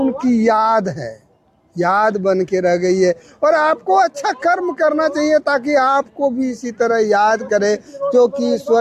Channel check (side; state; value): both; identical; correlation 1.00